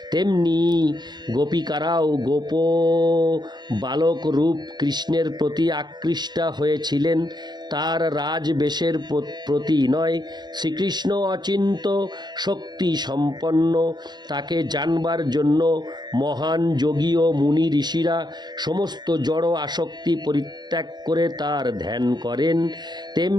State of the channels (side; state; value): left; late; 0.21 ms